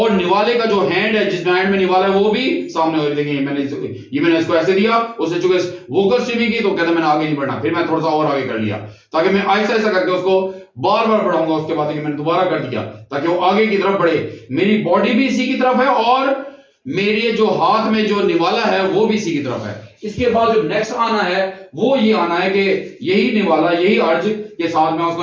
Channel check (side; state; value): both; identical; correlation 1.00